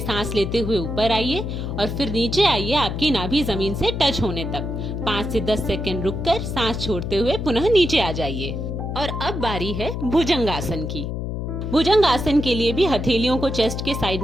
सांस लेते हुए ऊपर आइए और फिर नीचे आइए आपकी नाभि जमीन से टच होने तक। 5 से 10 सेकंड रुककर सांस छोड़ते हुए पुनः नीचे आ जाइए। और अब बारी है भुजंगासन की। भुजंगासन के लिए भी हथेलियों को चेस्ट के साइड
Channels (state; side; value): noise; left; hum, 4 dB below the sound